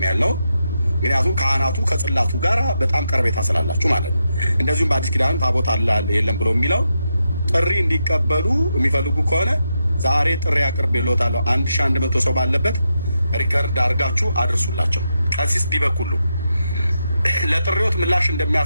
ያለው ምክንያቱም ካህናቱ ከጽላቱ ጋር በጣም ቀርቤታ ስላላችሁ ማለት ነው። እንደዚሁም በአዲስ ኪዳን ታቦት አለ የለም ብሎ የሚለው ጥሪ እንዲቀበሉ የሚፈልጉ ከሆነ ዛሬ ጥሪ አቅርቤልዎታለሁ። 1100 ሰው ባለበት ሪከርድ አድርጋችሁ አድርሱላቸው። ቀሲስ ዲበኩሉ ለጥሪዎት ምላሽ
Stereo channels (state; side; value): inverted; both; correlation -0.85